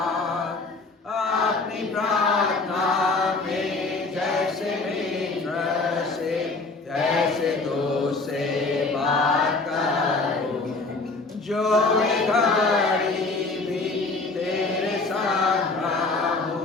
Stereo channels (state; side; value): quieter; right; 3.6 dB